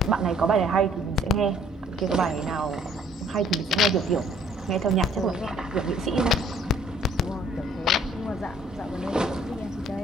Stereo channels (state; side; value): normal; both; correlation 0.60